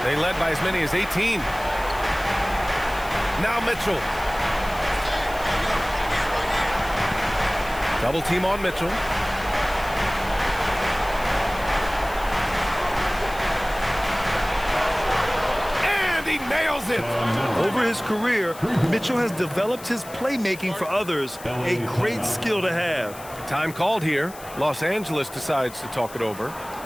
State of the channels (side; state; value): left; noise; hiss, 17 dB below the sound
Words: They led by as many as 18. Now Mitchell. Double team on Mitchell. And he nails it. Over his career, Mitchell has developed his playmaking for others, a great skill to have. Time called here. Los Angeles decides to talk it over.